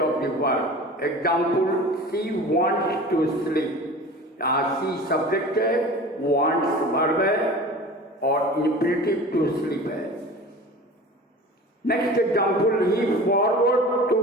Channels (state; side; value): normal; both; correlation 0.38